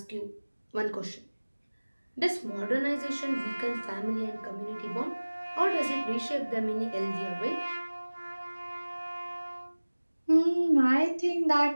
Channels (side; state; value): both; inverted; correlation -1.00